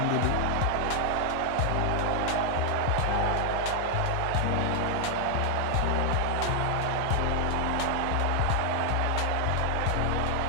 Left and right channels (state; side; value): different; both; correlation 0.00